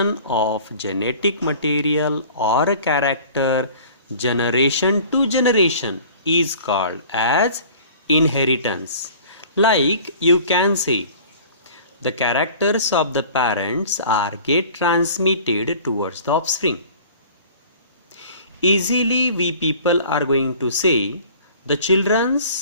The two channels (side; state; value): both; inverted; correlation -0.46